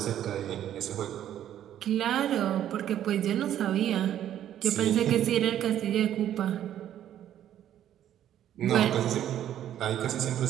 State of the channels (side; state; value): left; quieter; 11.1 dB